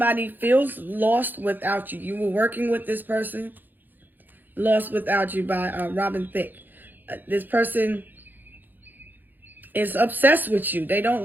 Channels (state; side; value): late; left; 0.089 ms